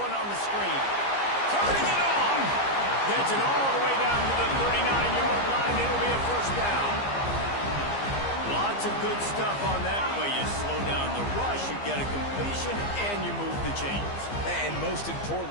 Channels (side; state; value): right; late; 15 ms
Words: on the screen. Turning it on. Gets it all the way down to the 39-yard line. It'll be a first down. Lots of good stuff on that play. You slow down the rush, you get a completion, and you move the chains. And most